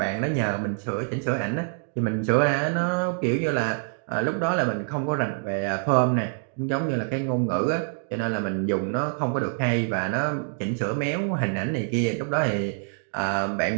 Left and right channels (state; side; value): silent; left; 61 dB below the other